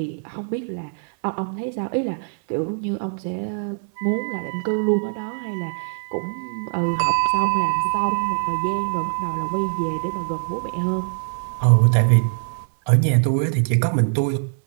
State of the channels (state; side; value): silent; left; 64 dB below the other